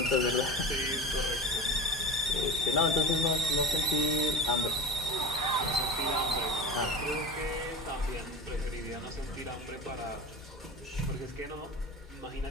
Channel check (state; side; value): normal; both; correlation 0.31